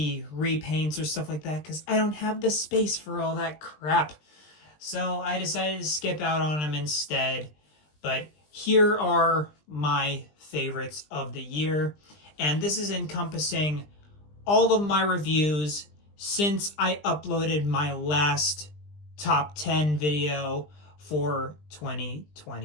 repaints or stuff like that because I don't have the space for all that crap. So I decided to skip out on them instead. But here are my favorites of the year. And this is encompassing all of my reviews since I uploaded my last top 10 video for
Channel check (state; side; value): late; right; 20 ms